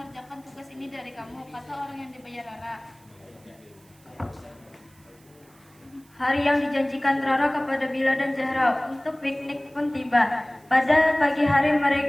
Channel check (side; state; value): right; noise; hiss, 29 dB below the sound